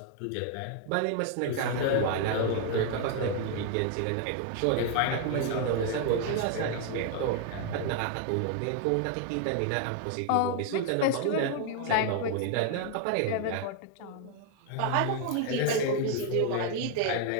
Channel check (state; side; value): different; both; correlation 0.00